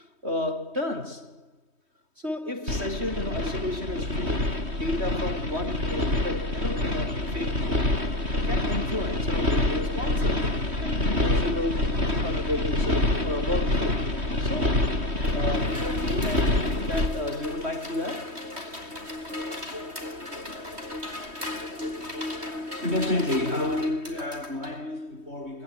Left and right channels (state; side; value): late; left; 3.2 ms